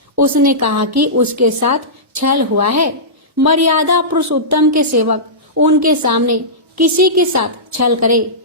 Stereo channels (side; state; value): both; normal; correlation -0.18